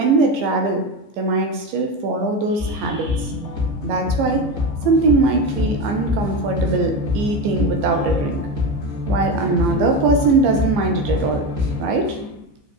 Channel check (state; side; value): late; left; 15 ms